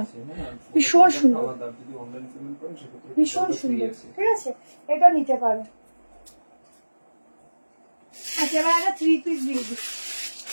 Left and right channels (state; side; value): inverted; both; correlation -1.00